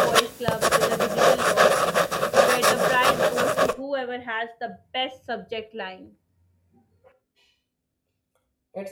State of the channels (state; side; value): identical; both; correlation 1.00